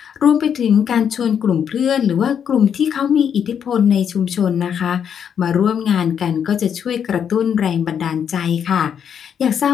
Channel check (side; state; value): right; quieter; 8.1 dB